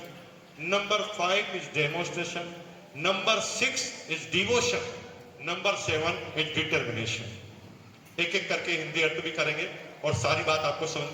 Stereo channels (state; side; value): identical; both; correlation 1.00